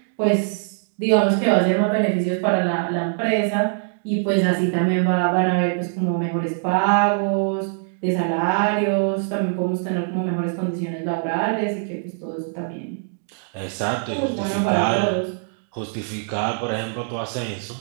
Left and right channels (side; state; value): left; silent; digital silence